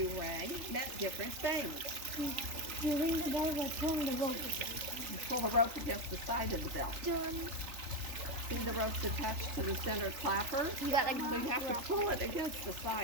rang meant different things. You ring the bell by pulling the rope. You pull the rope against the side of the bell. See the rope's attached to the center clapper? You got like So you have to pull it against the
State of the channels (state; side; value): late; left; 3.4 ms